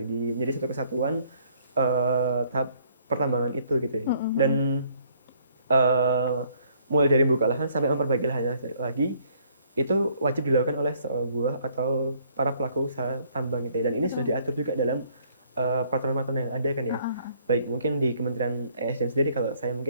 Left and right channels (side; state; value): both; inverted; correlation -0.64